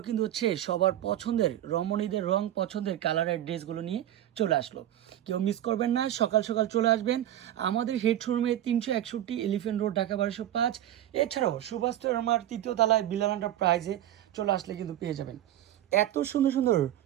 কিন্তু হচ্ছে সবার পছন্দের রমণীদের রং পছন্দের কালারের ড্রেসগুলো নিয়ে চলে আসলো। কেউ মিস করবেন না, সকাল সকাল চলে আসবেন আমাদের হেড শোরুমে 361 এলিফ্যান্ট রোড, ঢাকা 1205। এছাড়াও সুভাষ আমার 3য় তলায় বিলাল এন্টারপ্রাইজে চলে আসলে কিন্তু পেয়ে যাবেন এত সুন্দর সুন্দর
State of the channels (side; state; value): left; quieter; 12.3 dB